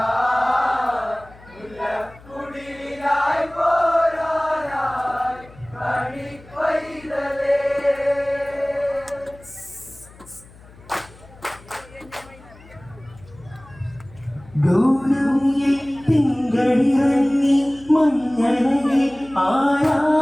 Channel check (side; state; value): left; noise; hum, 23 dB below the sound